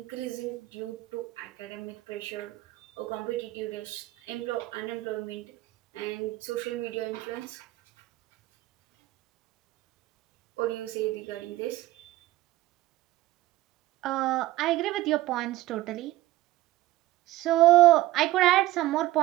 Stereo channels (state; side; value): quieter; left; 16.6 dB